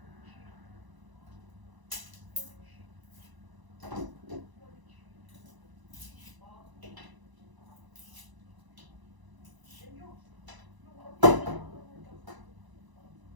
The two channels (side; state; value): left; late; 1.0 ms